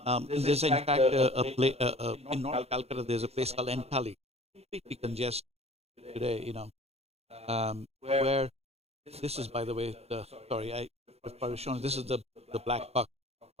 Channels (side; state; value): left; late; 0.30 ms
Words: There's in fact in North Calcutta. There's a place called Entally, completely congested today. Where this is, by the way, I was showing. This is the black buck,